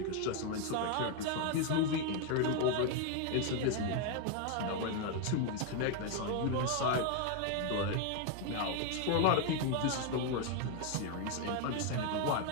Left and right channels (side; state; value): both; different; correlation 0.01